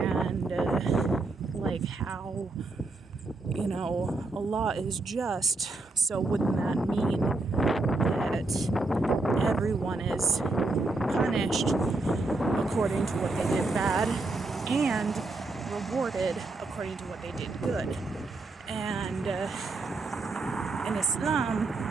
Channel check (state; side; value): quieter; left; 3.3 dB